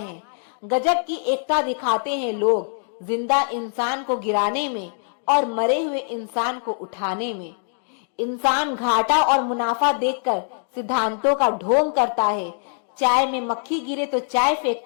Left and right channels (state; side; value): silent; right; digital silence